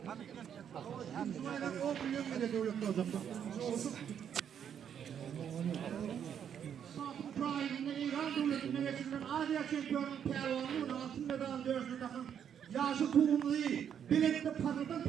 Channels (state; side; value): quieter; left; 8.6 dB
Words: Müslümanlar 10 milyon bile devlette o zaman. Prime'inde İran devletinde geçirilen Asya şampiyonu Pervan'ın altın medal dövüşünde yaşı tohumlu değil. Bilekte patladan